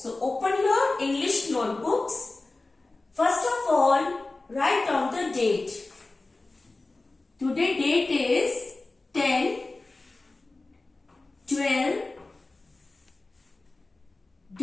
open your English notebooks. First of all, write down the date. Today date is 10 12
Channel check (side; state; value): right; quieter; 3.2 dB